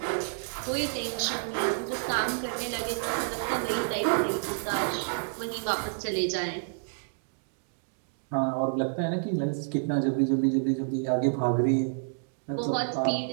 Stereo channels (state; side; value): silent; left; digital silence